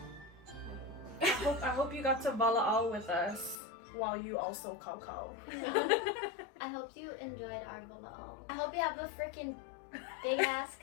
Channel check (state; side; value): drops out; right; at 3.6 s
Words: I hope you got to walaʻau with us while you also kakao. I hope you enjoyed our walaʻau. I hope you have a freaking big ass